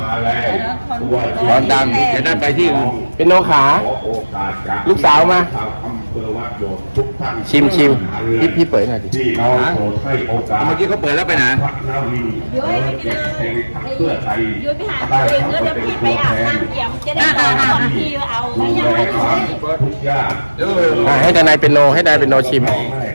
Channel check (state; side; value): inverted; both; correlation -1.00